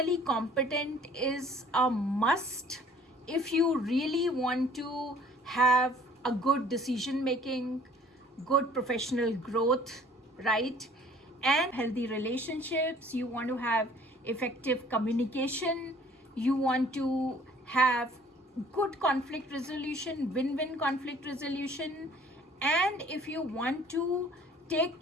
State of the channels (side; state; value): both; normal; correlation 0.54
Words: competent is a must if you really want to have a good decision making, good professional growth, right? And healthy relationships. You want to have effective communication. You want to have good conflict resolution, win-win conflict resolution. And if you want to take